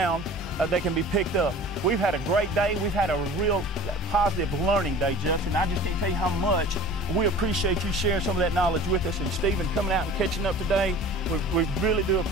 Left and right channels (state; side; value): normal; both; correlation 0.42